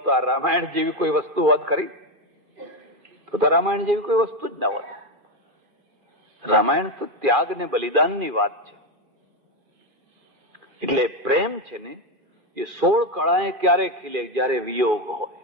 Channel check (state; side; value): late; left; 2.4 ms